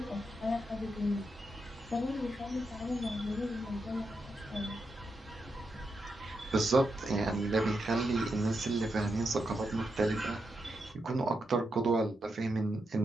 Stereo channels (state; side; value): normal; both; correlation 0.85